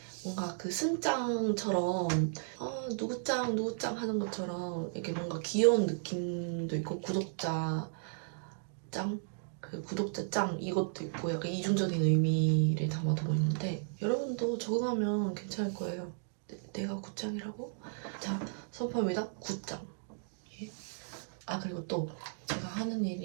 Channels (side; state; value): left; silent; digital silence